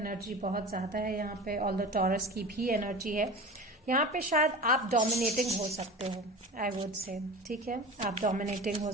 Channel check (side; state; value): both; normal; correlation 0.33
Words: बहुत ज्यादा है यहाँ पे, ऑल द टॉरस की भी एनर्जी है यहाँ पे। शायद आप डोमिनेटिंग हो सकते हो, आई वुड से, ठीक है, आप डोमिनेटिंग हो